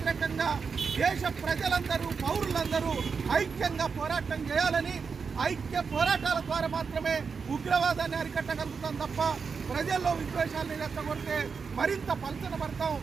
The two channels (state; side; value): quieter; left; 5.5 dB